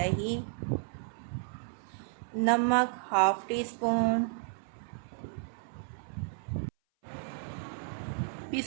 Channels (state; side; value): silent; left; 56 dB below the other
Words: नमक हाफ़ टी स्पून,